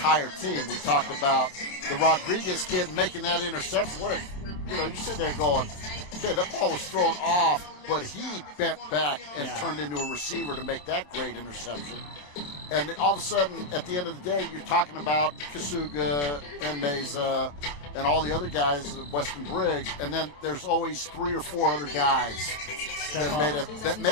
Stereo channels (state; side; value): late; right; 27 ms